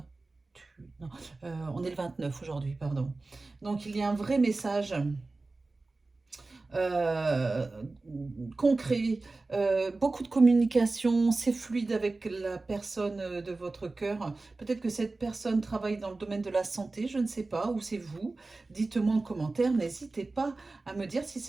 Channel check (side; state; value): left; quieter; 3.4 dB